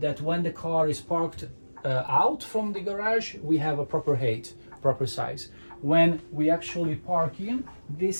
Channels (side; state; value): both; inverted; correlation -1.00